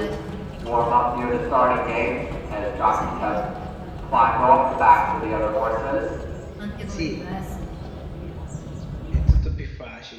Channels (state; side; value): identical; both; correlation 1.00